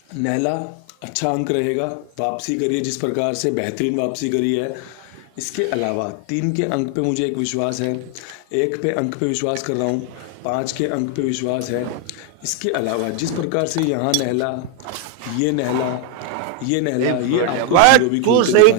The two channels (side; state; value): both; different; correlation 0.00